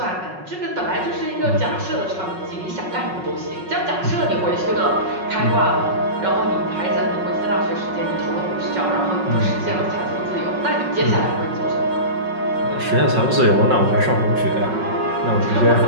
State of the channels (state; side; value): late; left; 5.4 ms